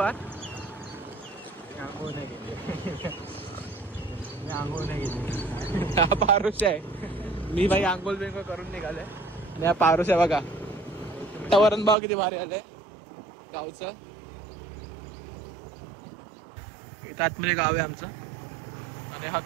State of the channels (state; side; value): drops out; left; at 12.0 s